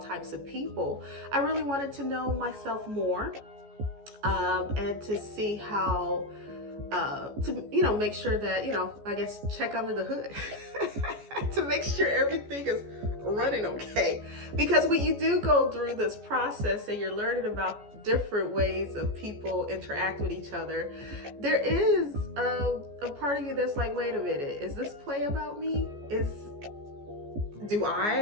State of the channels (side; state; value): left; late; 14 ms